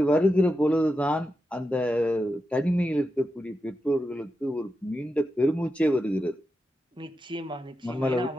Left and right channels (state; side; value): normal; both; correlation 0.89